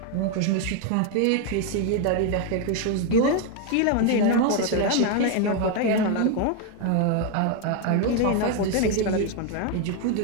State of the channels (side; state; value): both; different; correlation 0.01